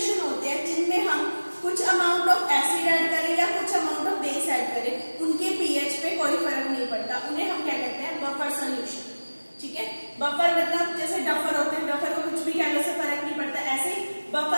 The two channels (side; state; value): both; inverted; correlation -1.00